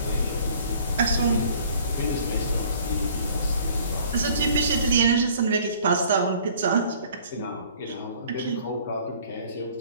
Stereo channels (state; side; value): inverted; both; correlation -0.53